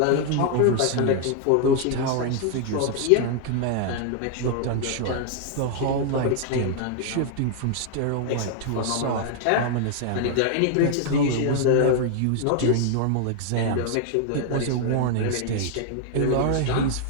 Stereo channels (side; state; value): both; different; correlation 0.00